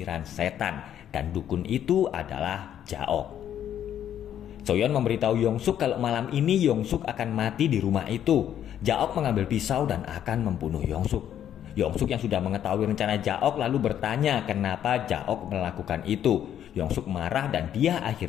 setan. Dan dukun itu adalah Jaok. Soyeon memberitahu Yongsuk kalau malam ini Yongsuk akan mati di rumah itu. Jaok mengambil pisau dan akan membunuh Yongsuk. Yongsuk yang sudah mengetahui rencana Jaok lalu bertanya kenapa Jaok melakukan itu. Yongsuk marah dan dia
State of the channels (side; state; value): right; quieter; 10.3 dB